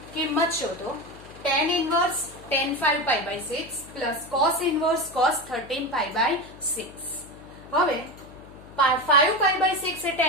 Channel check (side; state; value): left; noise; hum, 20 dB below the sound